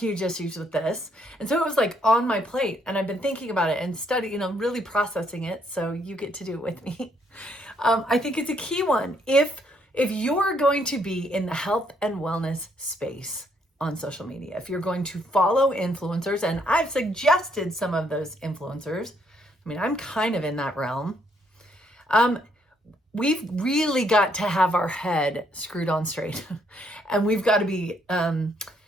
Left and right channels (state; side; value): normal; both; correlation 0.71